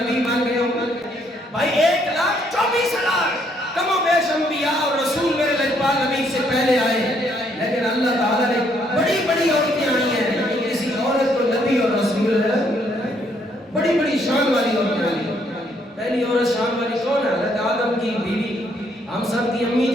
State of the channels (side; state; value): both; normal; correlation 0.70